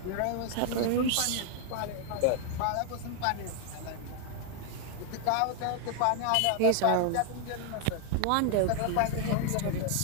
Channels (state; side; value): different; both; correlation 0.00